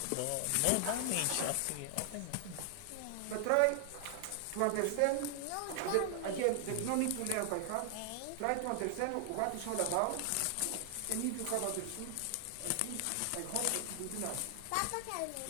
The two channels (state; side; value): different; both; correlation 0.00